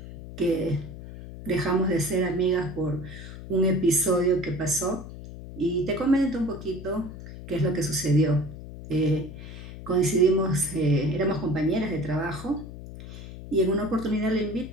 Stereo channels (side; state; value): left; noise; hum, 13 dB below the sound